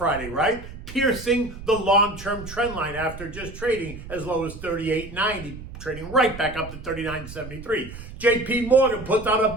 right? Piercing the long-term trend line after just trading as low as 38.90, trading right back up to 39.73. JPMorgan puts out a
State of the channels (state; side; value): noise; right; rumble, 13 dB below the sound